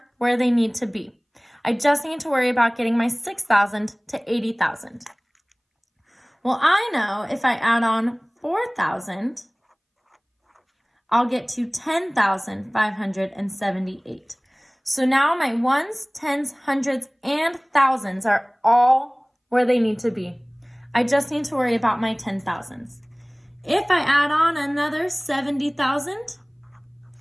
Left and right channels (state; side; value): identical; both; correlation 1.00